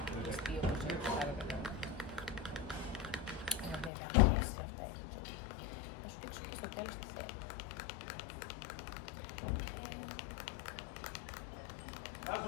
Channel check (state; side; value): drops out; right; at 3.9 s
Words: όπως είναι το άλλο καλά. Βέβαια, και αυτά έχει ζωή. Θα σου δείξω και στο τέλος τι θέλω.